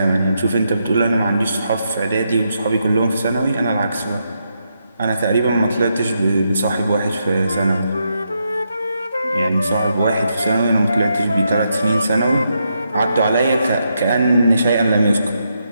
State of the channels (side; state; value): both; inverted; correlation -0.82